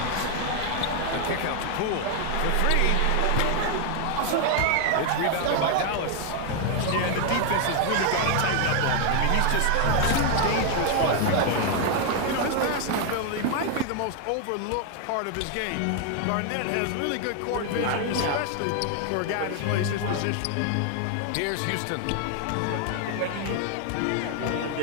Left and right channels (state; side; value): different; both; correlation 0.00